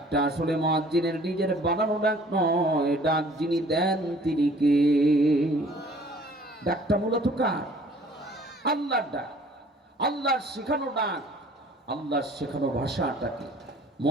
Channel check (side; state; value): both; normal; correlation 0.53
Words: আসলে মুয়াজ্জিনের নিজের বানানো ডাক নয়, ডাক যিনি দেন তিনি কে? ডাকটা মূলত কার? আল্লাহর ডাক, আল্লাহর শেখানো ডাক, আল্লাহর শেখানো ভাষাটাকে